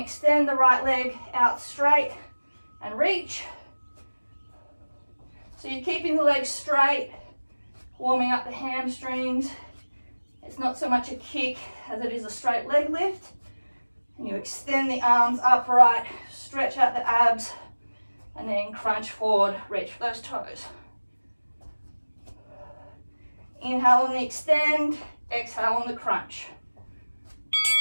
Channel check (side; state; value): both; inverted; correlation -1.00